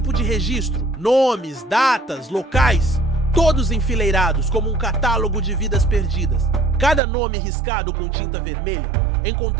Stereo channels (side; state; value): left; drops out; at 7.0 s